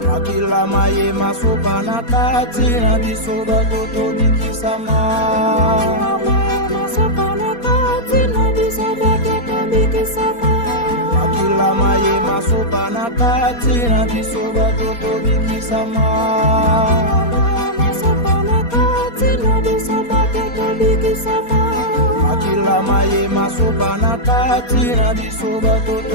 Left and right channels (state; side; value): late; right; 4.2 ms